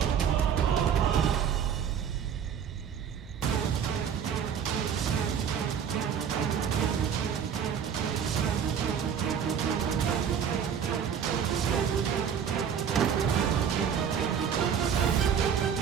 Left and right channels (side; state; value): left; quieter; 7.9 dB